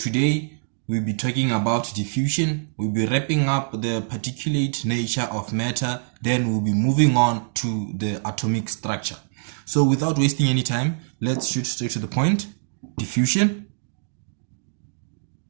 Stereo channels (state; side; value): silent; left; digital silence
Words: we'll be talking about diffusion. We'll be wrapping up the particulate nature of matter, then we'll be moving on to the atomic structure. So without wasting any time, let's shoot straight to the point. Diffusion.